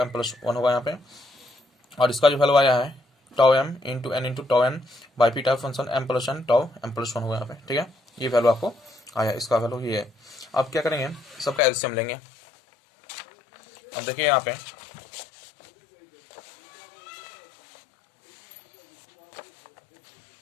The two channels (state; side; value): drops out; right; at 11.6 s